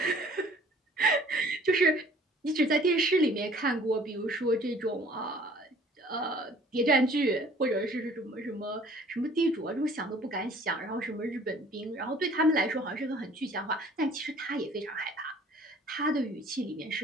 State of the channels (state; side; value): normal; both; correlation 0.53